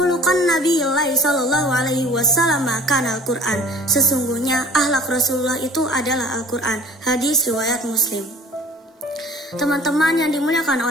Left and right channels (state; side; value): normal; both; correlation 0.48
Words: Nabiyillahi sallallahu alaihi wasallam kana Al-Quran. Sesungguhnya akhlak Rasulullah itu adalah Al-Quran. Hadis riwayat Muslim. Teman-teman yang dimuliakan